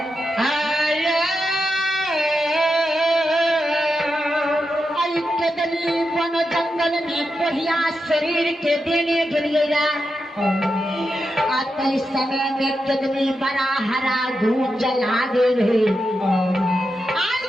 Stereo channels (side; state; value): both; normal; correlation 0.88